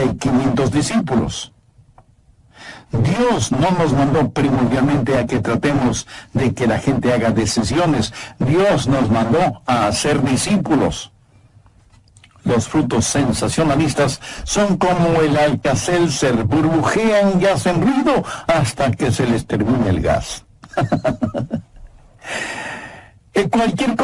500 discípulos. Dios no nos mandó primordialmente a que tratemos de que la gente haga decisiones. Dios nos mandó a hacer discípulos. Los frutos sensacionalistas son como el Alka-Seltzer, burbujean y hacen ruido hasta que se les termine el gas. Cualquier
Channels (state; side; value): identical; both; correlation 1.00